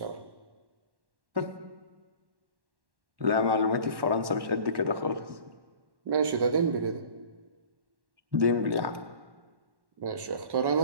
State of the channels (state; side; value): late; left; 1.1 ms